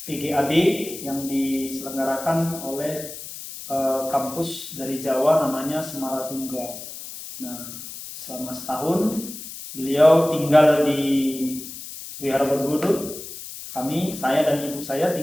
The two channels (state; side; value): noise; left; hiss, 11 dB below the sound